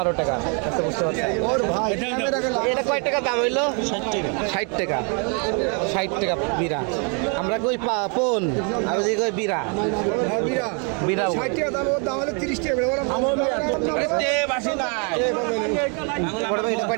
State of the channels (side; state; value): left; quieter; 36.6 dB